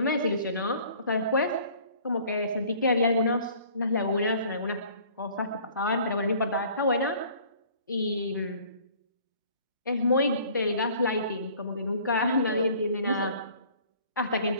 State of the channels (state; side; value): inverted; both; correlation -0.53